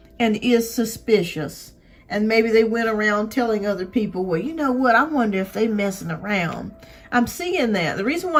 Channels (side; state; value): both; identical; correlation 1.00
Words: and is suspicious. And maybe they went around telling other people, well, you know what? I wonder if they messing around. I'm seeing that. The reason why